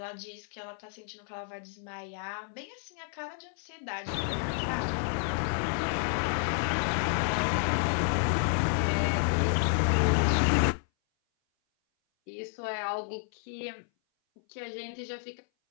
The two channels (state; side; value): silent; right; 57 dB below the other